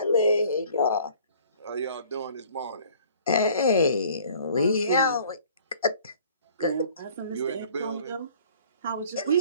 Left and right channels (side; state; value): both; inverted; correlation -0.53